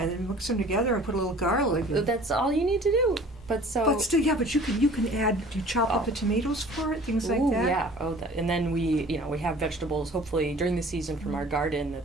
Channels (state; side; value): normal; both; correlation 0.48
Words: then mix them together and put a little garlic. That's all you need to do. But still, but you can add. Do you chop up the tomatoes for it? Things like that. Yeah. And then we have vegetables. Hopefully during the season from our garden